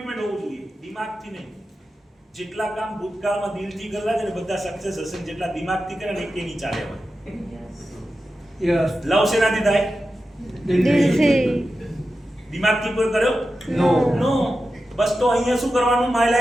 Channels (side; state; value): both; normal; correlation 0.92